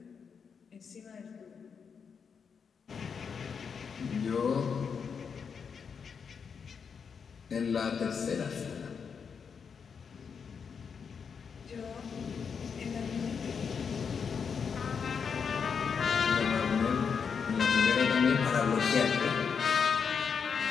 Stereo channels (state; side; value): quieter; right; 6.3 dB